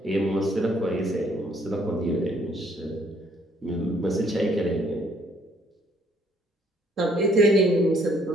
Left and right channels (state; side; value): normal; both; correlation 0.64